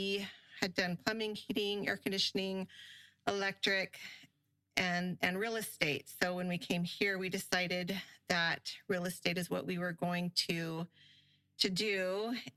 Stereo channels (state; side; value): identical; both; correlation 1.00